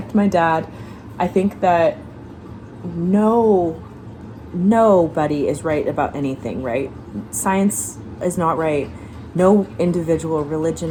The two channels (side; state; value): both; identical; correlation 1.00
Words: my dad, I think that nobody is right about anything, right? Science is not right. No individual